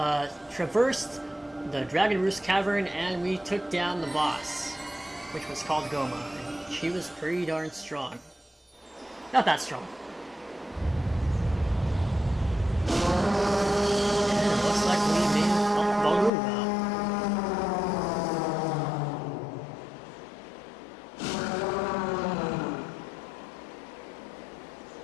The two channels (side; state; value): right; drops out; at 16.3 s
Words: traversed the Dragon Roost Cavern, and we took down the boss, which was called Goma, and she was pretty darn strong. Not that strong. And it looks like we made Valoo now.